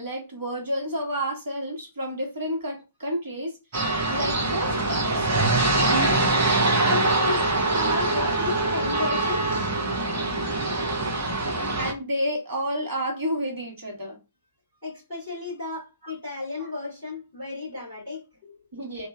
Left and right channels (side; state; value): both; inverted; correlation -0.44